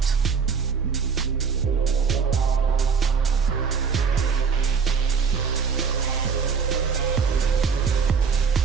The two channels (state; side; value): quieter; left; 5.9 dB